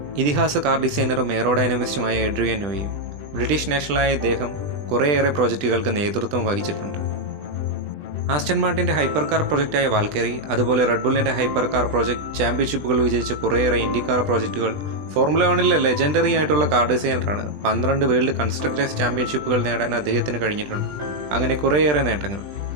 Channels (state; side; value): late; left; 20 ms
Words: ഇതിഹാസ കാർ ഡിസൈനറും എയറോഡൈനാമിസ്റ്റുമായ എഡ്രിയൻ ന്യൂയി. ബ്രിട്ടീഷ് നാഷണലായ ഇദ്ദേഹം കുറേയേറെ പ്രോജക്റ്റുകൾക്ക് നേതൃത്വം വഹിച്ചിട്ടുണ്ട്. ആസ്റ്റൺ മാർട്ടിൻ്റെ ഹൈപ്പർ കാർ പ്രൊജക്റ്റായ വാൽക്കേറി, അതുപോലെ റെഡ്ബുള്ളിൻ്റെ ഹൈപ്പർ കാർ പ്രൊജക്ട്, ചാമ്പ്യൻഷിപ്പുകൾ വിജയിച്ച കുറേയേറെ ഇൻഡിക്കാർ പ്രോജക്റ്റുകൾ. ഫോർമുല 1 ലെജൻഡറി ആയിട്ടുള്ള കാർ ഡിസൈനറാണ്. 12 വേൾഡ് കൺസ്ട്രക്ടേഴ്സ് ചാമ്പ്യൻഷിപ്പുകൾ നേടാൻ അദ്ദേഹത്തിന് കഴിഞ്ഞിട്ടുണ്ട്. അങ്ങനെ കുറേയേറെ നേട്ടങ്ങൾ.